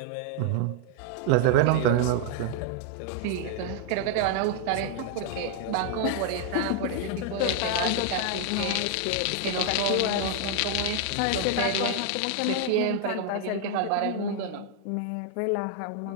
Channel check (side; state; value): both; different; correlation 0.00